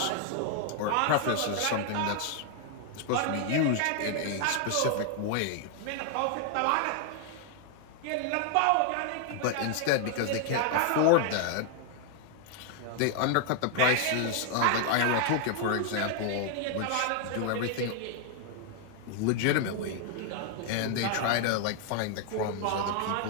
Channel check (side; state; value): both; different; correlation 0.00